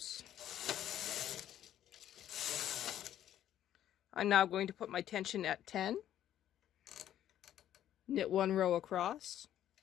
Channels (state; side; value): quieter; right; 11.4 dB